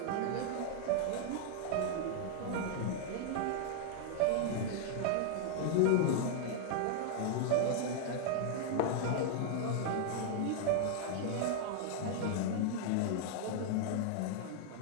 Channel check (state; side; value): different; both; correlation 0.00